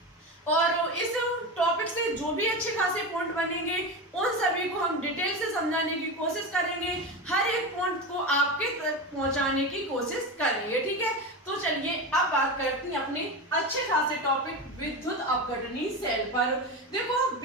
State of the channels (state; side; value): normal; both; correlation 0.21